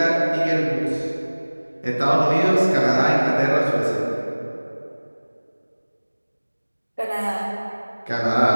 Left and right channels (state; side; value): inverted; both; correlation -1.00